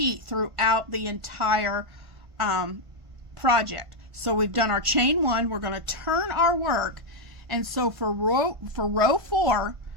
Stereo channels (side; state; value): left; late; 1.5 ms